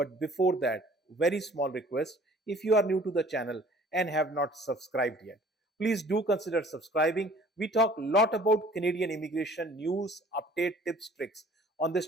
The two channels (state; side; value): normal; both; correlation 0.52